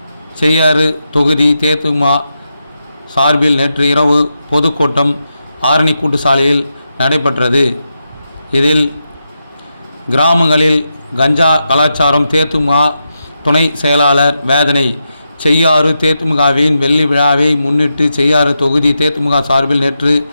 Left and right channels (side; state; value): both; inverted; correlation -0.87